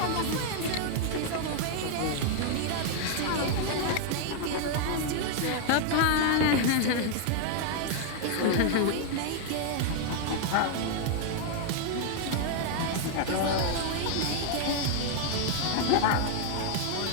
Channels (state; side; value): different; both; correlation 0.00